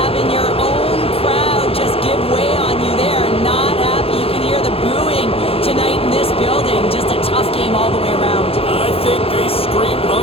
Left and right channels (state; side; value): late; right; 0.28 ms